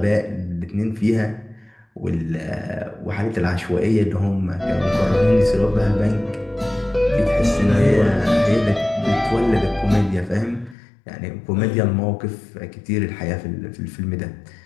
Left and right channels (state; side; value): drops out; right; at 10.8 s